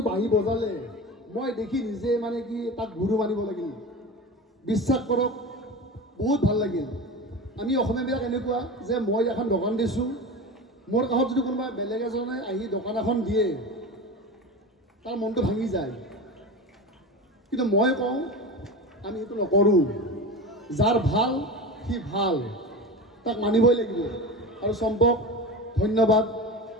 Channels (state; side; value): normal; both; correlation 0.28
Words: বাঁহী বজালে মই দেখি নিজে মানে কি তাক গুৰু মানিব লাগিল। বিশ্বাস কৰক বহুত ভাল লাগিল। আমি অসমীয়াবিলাক এনেকুৱা যে মই এখন দোকান দিছোঁ, মোৰ কাষত যদি কোনোবা বেলেগ এজনে আহি দোকান এখন দিয়ে তাৰ মনটো ভাঙি যায়, কিন্তু মই কওঁ আমি সেইটো নকৰোঁ। যাৰ ভাল সি ভাল, তাক মানিবই লাগিব। আৰু চম্পক ধন্যবাদ।